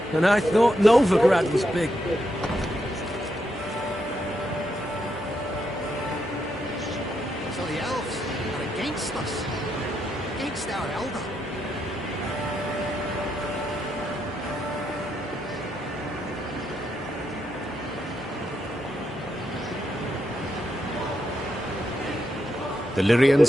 And I thought Novigrad was big. So the elves are against us. Against our elder. The Lyrians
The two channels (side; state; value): both; normal; correlation 0.81